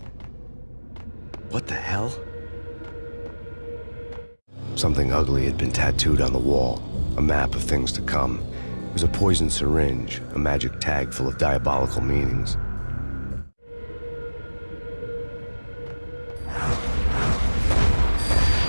What the hell? Something ugly had been tattooed on the wall, a map of things to come. It was a poison syringe, a magic tag full of diabolical meanings.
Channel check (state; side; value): inverted; both; correlation -1.00